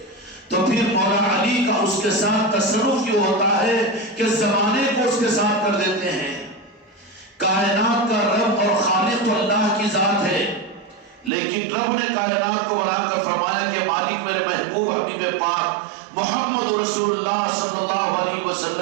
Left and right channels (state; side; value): drops out; left; at 11.3 s